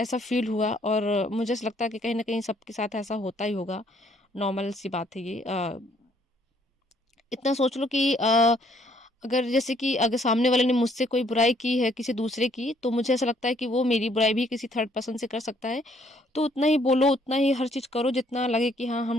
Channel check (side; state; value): both; normal; correlation 0.65